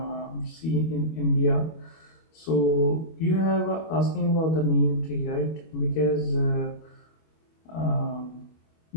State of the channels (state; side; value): late; right; 25 ms